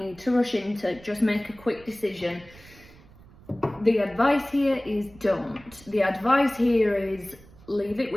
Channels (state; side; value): noise; right; rumble, 23 dB below the sound